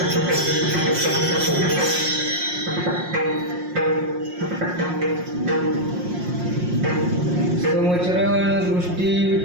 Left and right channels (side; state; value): left; late; 5.6 ms